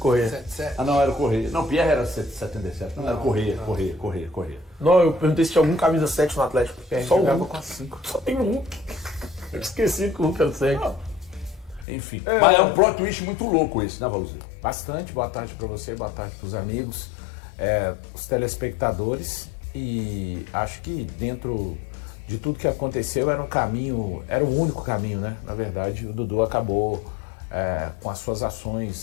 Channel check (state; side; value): drops out; right; at 11.9 s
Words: Ah, não, era o Correia. Não, Pierre era 77. Não, era Correia. Não, eu perguntei se tinha algum camisa 7 no Atlético. Só jogava com a 5. Só tem um. Eu esqueci que o Hulk era 7. Enfim. Mas é um plot twist muito louco esse, né, Valuzzi? Bastante. Boa tarde para você, boa tarde para os amigos, os telespectadores. E acho que dentro de tudo que aconteceu era o único caminho, né? Na verdade, o Dudu acabou com as suas